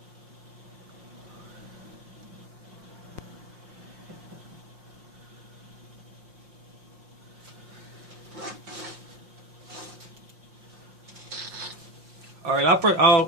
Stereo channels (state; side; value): late; left; 5.6 ms